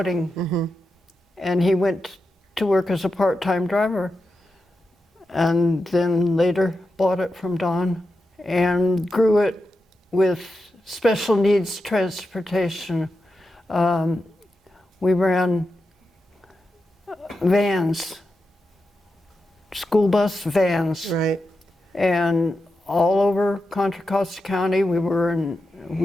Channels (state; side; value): normal; both; correlation 0.89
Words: and he went to work as a part-time driver, and then later bought it from Don and grew it with special needs transportation. We ran vans, school bus vans. Right. And all over Contra Costa County, we worked